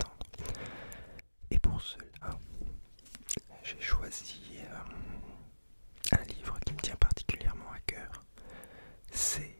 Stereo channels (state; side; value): inverted; both; correlation -1.00